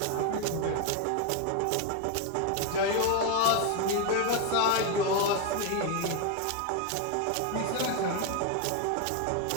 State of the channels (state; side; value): different; both; correlation 0.01